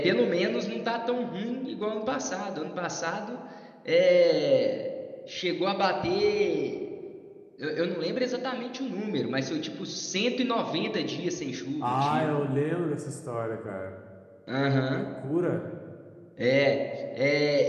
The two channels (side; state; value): both; identical; correlation 1.00